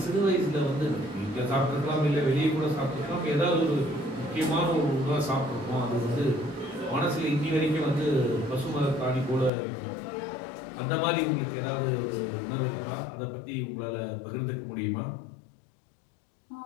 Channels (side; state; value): right; drops out; at 9.5 s